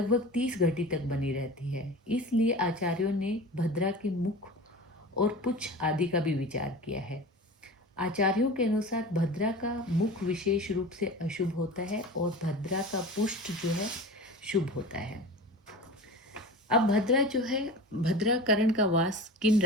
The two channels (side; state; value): both; normal; correlation 0.34